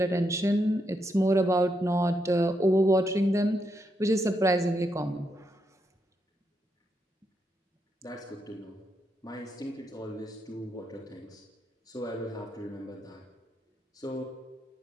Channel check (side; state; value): both; normal; correlation 0.81